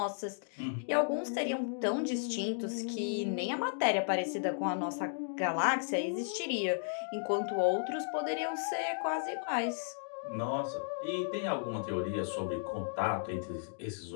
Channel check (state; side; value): silent; right; digital silence